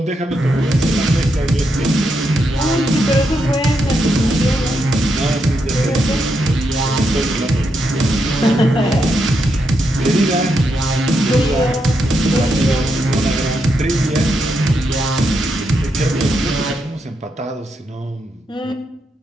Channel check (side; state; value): both; normal; correlation 0.82